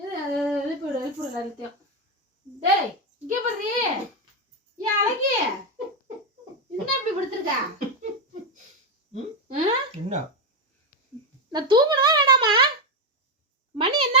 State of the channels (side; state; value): both; normal; correlation 0.07